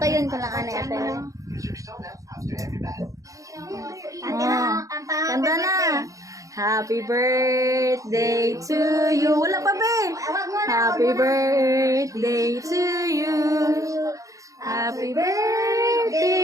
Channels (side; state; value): left; late; 0.16 ms